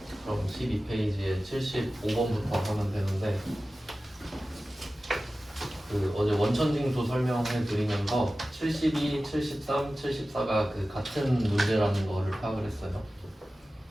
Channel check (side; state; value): both; normal; correlation 0.95